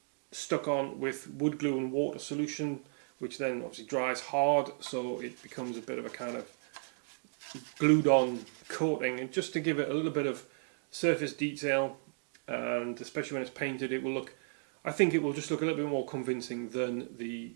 stuck on with wood glue and water solution, which then obviously dries hard, so it becomes a bit of a kind of glued on coating, and just to give it a little bit of surface detail, and especially when it's painted, it will look, I think it will just look a little bit more convincing than the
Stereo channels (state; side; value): silent; left; digital silence